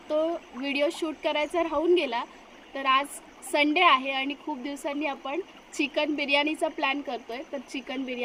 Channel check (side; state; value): both; identical; correlation 1.00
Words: तो व्हिडिओ शूट करायचा राहून गेला। तर आज संडे आहे आणि खूप दिवसांनी आपण चिकन बिर्याणीचा प्लॅन करतोय, तर चिकन